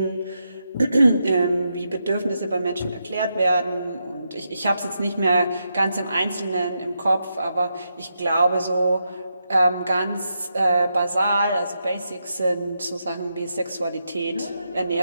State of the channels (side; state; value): both; inverted; correlation -0.84